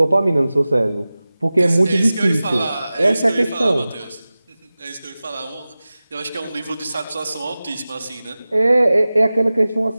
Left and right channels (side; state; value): both; inverted; correlation -0.97